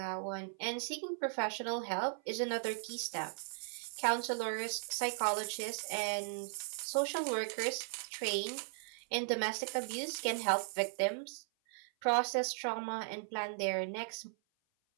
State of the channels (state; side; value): silent; left; 53 dB below the other